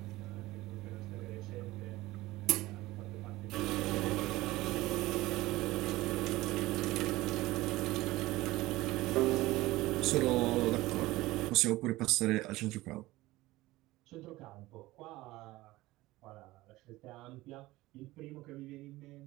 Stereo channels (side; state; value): left; quieter; 18.6 dB